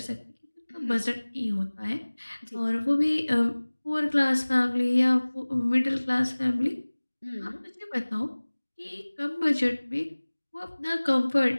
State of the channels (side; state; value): both; inverted; correlation -1.00